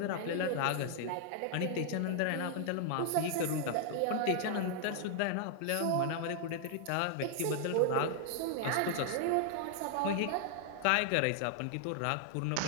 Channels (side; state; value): both; different; correlation -0.01